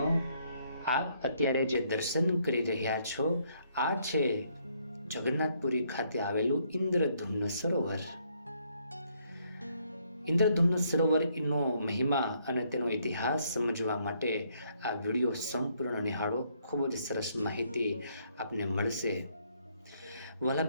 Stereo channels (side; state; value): both; inverted; correlation -0.70